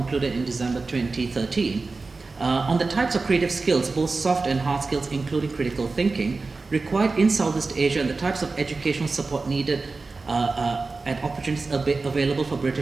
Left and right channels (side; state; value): left; quieter; 3.9 dB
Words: in December 2013, on the types of creative skills, both soft and hard skills, including critical thinking, required in Southeast Asia and the types of educational support needed and opportunities available for